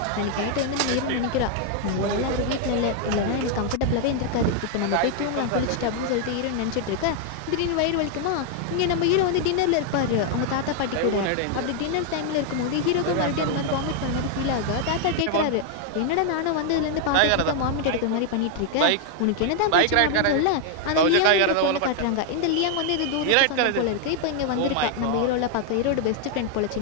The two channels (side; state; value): both; different; correlation 0.00